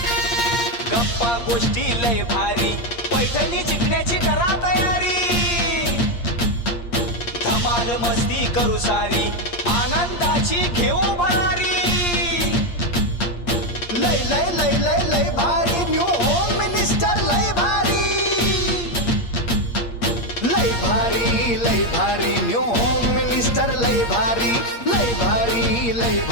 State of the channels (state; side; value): late; right; 8.5 ms